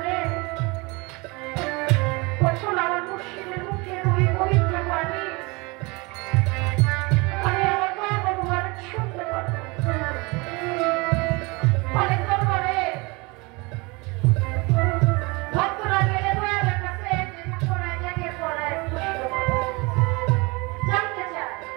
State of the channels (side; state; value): left; quieter; 26.5 dB